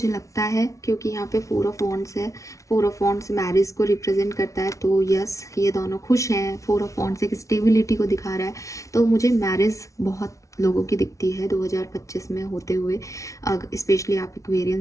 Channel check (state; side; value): late; right; 0.15 ms